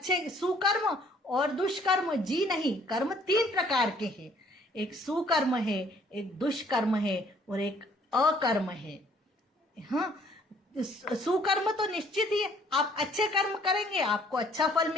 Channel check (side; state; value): both; normal; correlation 0.60